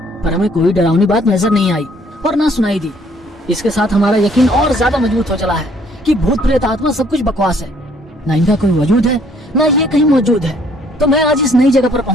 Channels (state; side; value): normal; both; correlation 0.62